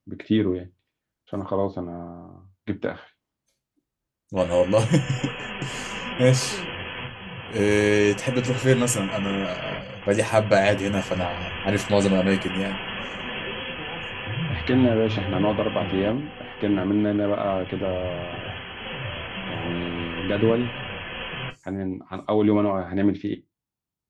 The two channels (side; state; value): both; identical; correlation 1.00